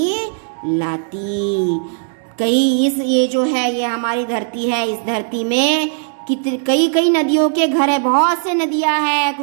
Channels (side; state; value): left; silent; digital silence